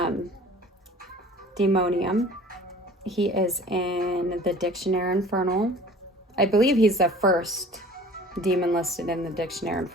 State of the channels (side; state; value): both; normal; correlation 0.46